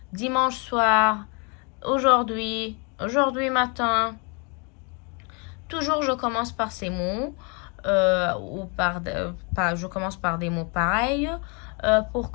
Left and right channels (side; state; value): right; quieter; 33.9 dB